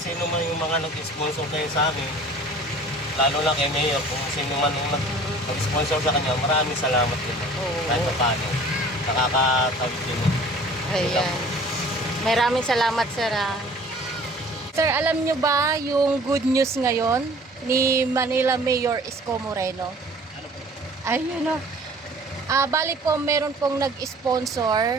sino man yung mga nag-sponsor kayo sa amin. Lalo na kay Mayor, kung sino man yung nag-sponsor sa kanya, maraming salamat din. Kahit pa paano, nakakatawid din. Ayan. Maraming salamat, sir. Sir, alam nyo ba yung good news ngayon ni Manila Mayor Isko Moreno? Ayun o. Bali po, meron pong nag-sponsor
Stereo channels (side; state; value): both; normal; correlation 0.48